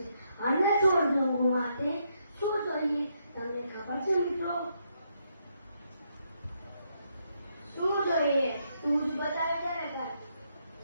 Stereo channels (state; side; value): inverted; both; correlation -0.77